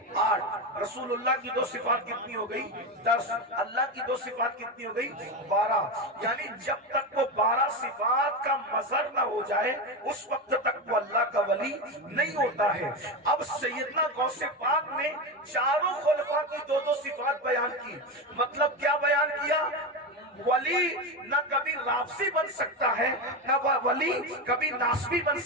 8। रसूलुल्लाह की 2 सिफात कितनी हो गई, 10। अल्लाह की 2 सिफात कितनी हो गई, 12। यानी जब तक वो 12 सिफात का मजहर ना हो जाए उस वक्त तक वो अल्लाह का वली नहीं होता है। अब सैयदना गौसे पाक ने चारों खुलफा की 2-2 सिफात बयान की, मतलब क्या बयान किया, वली न कभी राफसी बन सकता है, न वली कभी नासबी बन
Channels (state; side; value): normal; both; correlation 0.16